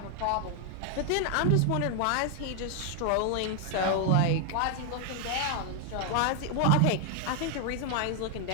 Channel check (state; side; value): different; both; correlation 0.00